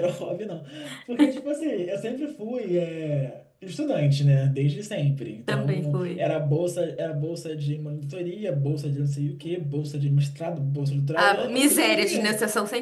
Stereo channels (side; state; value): both; identical; correlation 1.00